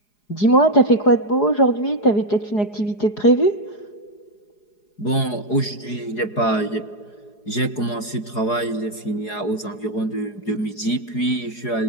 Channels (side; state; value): right; late; 4.8 ms